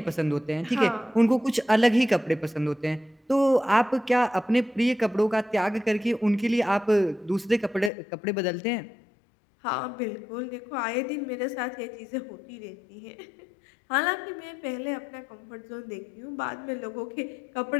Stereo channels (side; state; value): right; drops out; at 7.9 s